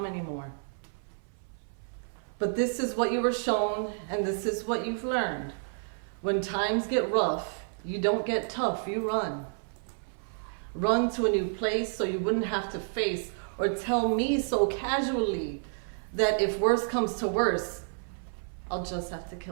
more? But this is what you were shown, and this is what you've learned. When times get rough, you don't get tough, you run. Run to a new place so you wouldn't have to face or tell me so casually that if worse comes to worse, I'll just have to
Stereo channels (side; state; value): left; silent; 57 dB below the other